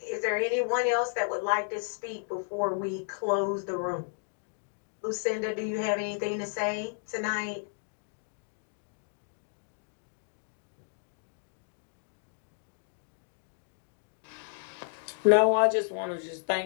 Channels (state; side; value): silent; right; digital silence